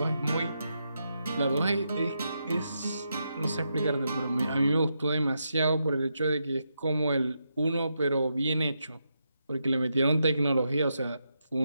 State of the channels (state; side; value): inverted; both; correlation -0.84